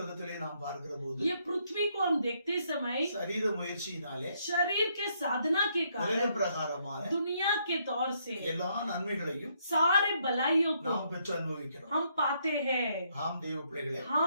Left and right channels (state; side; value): inverted; both; correlation -0.72